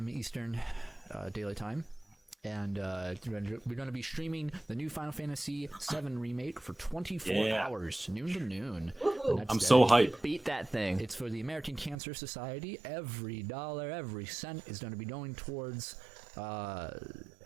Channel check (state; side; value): drops out; left; at 12.0 s